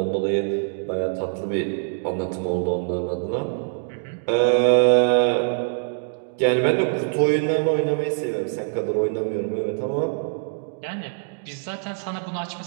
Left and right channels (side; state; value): left; silent; digital silence